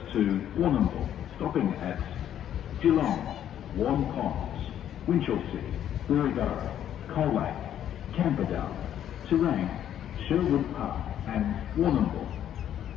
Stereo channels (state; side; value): quieter; right; 10.5 dB